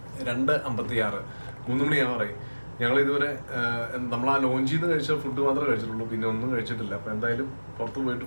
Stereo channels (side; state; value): both; inverted; correlation -1.00